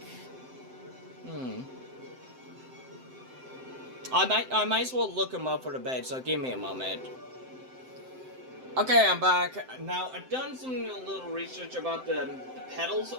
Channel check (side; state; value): left; late; 7.7 ms